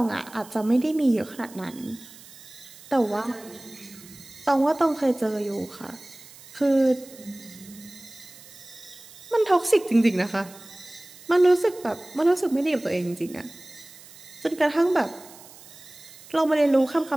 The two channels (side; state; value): right; noise; hiss, 20 dB below the sound